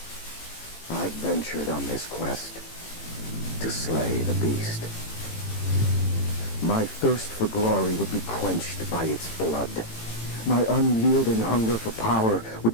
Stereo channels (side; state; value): right; late; 18 ms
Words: I've ventured on this quest to slay the beast. My thirst for glory would be quenched by its blood. My unyielding hunger for power